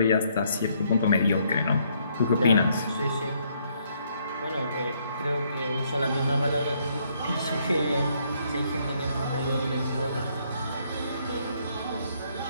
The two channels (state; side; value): inverted; both; correlation -0.70